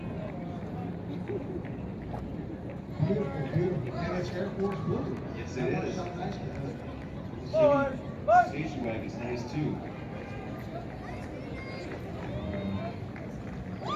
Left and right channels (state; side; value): identical; both; correlation 1.00